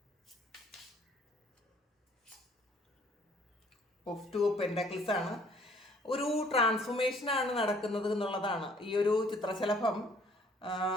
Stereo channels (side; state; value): both; normal; correlation 0.59